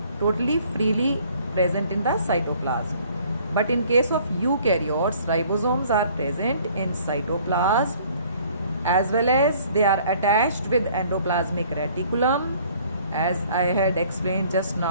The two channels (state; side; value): inverted; both; correlation -0.56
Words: totally freely present in the cytoplasm. But in case of eukaryotes, ribosomes are present in cytoplasm as well as they are attached with endoplasmic reticulum, as I had explained just